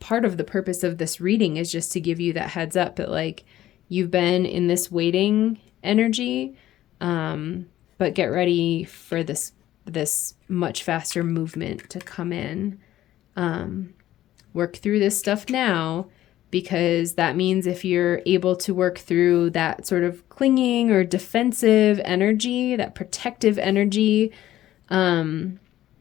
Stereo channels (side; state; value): right; quieter; 13.7 dB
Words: of the purpose of this reading is just to give you that heads up that like you've been in this waiting energy, but get ready for this much faster movement to come in. Work through this stuff now, because that means if you're able to work through that sort of clinging or defensive energy, that protective energy, the